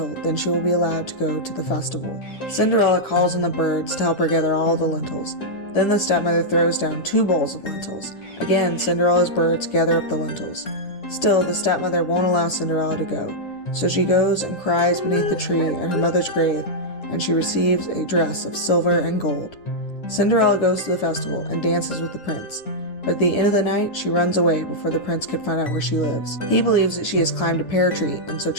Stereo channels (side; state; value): right; late; 10 ms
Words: then she will be allowed to go to the festival. Cinderella calls on the birds to help her gather all the lentils. Then the stepmother throws down 2 bowls of lentils. Again, Cinderella's birds gather up the lentils. Still, the stepmother won't allow Cinderella to go, so she goes and cries beneath the tree at her mother's grave, and she receives a dress of silver and gold. Cinderella goes to the festival and dances with the prince, but at the end of the night, she runs away before the prince could find out where she lives. He believes that she has climbed a pear tree and so